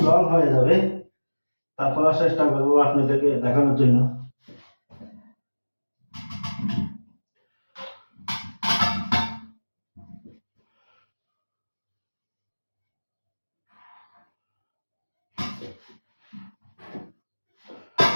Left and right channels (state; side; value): inverted; both; correlation -1.00